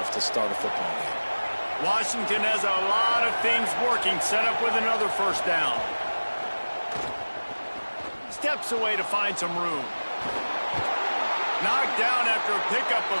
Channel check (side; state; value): both; inverted; correlation -1.00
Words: to start a football game. Washington has a lot of things working, set up with another first down. Steps away to find some room. Knocked down after a pickup